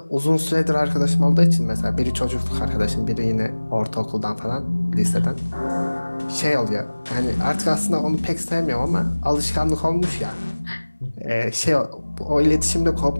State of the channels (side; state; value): both; inverted; correlation -1.00